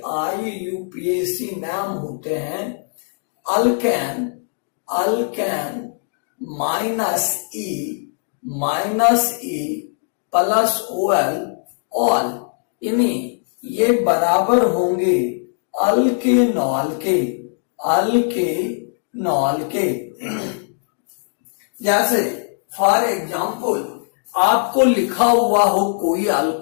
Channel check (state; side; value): silent; right; digital silence